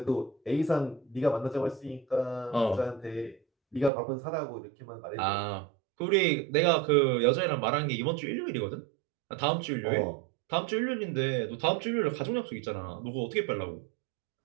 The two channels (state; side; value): drops out; left; at 3.9 s